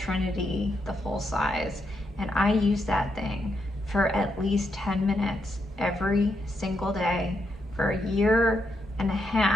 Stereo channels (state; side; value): normal; both; correlation 0.81